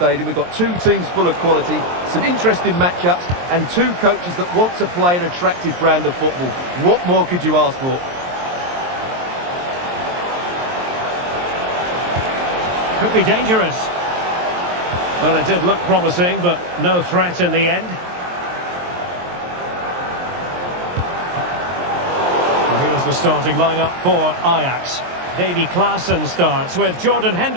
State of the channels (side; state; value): left; late; 23 ms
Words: We've got two teams full of quality, some interesting matchups, and two coaches that want to play an attractive brand of football. What more could you ask for? Could be dangerous. Well, it did look promising, but no threat in the end. Well, here's the starting lineup for Ajax. Davy Klaassen starts with Jordan